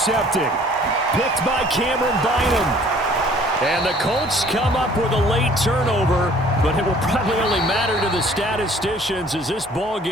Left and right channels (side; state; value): both; normal; correlation 0.54